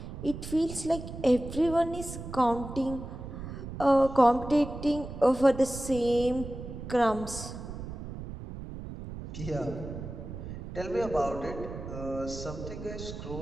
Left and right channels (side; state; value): right; noise; rumble, 9 dB below the sound